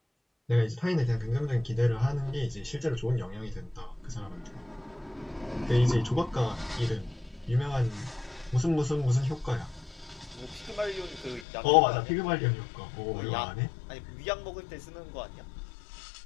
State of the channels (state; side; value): drops out; right; at 11.5 s